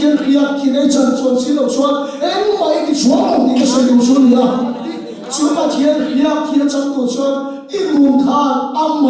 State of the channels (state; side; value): identical; both; correlation 1.00